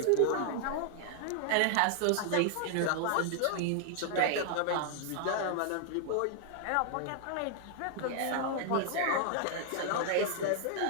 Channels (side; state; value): both; different; correlation 0.00